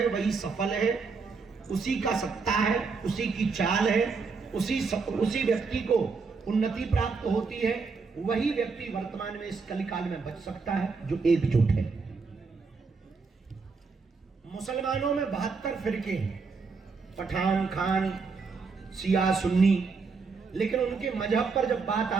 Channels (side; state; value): left; quieter; 4.7 dB